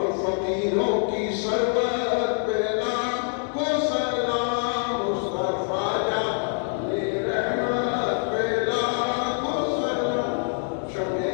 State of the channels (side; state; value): right; silent; 60 dB below the other